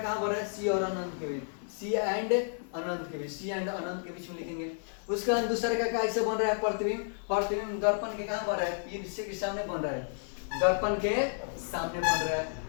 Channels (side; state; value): right; silent; 57 dB below the other